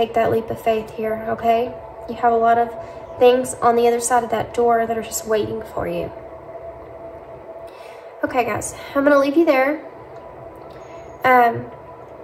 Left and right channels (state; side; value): identical; both; correlation 1.00